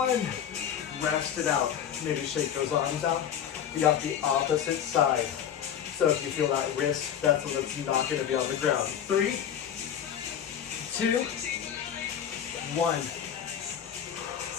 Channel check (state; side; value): quieter; right; 9.2 dB